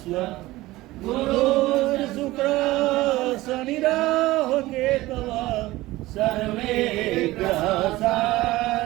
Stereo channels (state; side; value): quieter; left; 18.3 dB